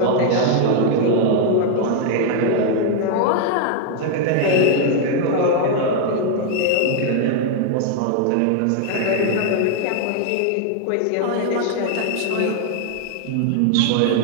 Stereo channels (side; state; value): both; different; correlation 0.00